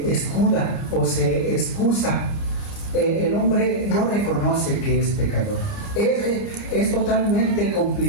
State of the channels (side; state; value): right; late; 29 ms